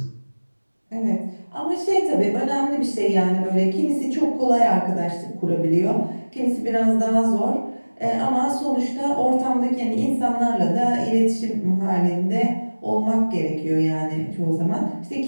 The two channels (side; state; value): both; inverted; correlation -1.00